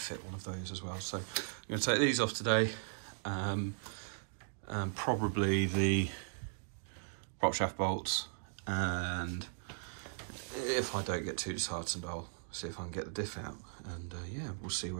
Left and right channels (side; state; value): left; silent; digital silence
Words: fit one of those as well. So I'm going to take these off today, and probably the prop shaft bolts, and if I don't get too disheartened, I'll see if I can get the diff out, and yeah, we'll see